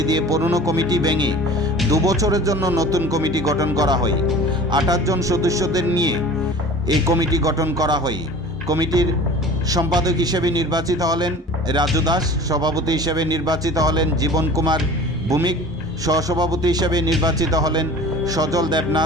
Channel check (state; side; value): normal; both; correlation 0.42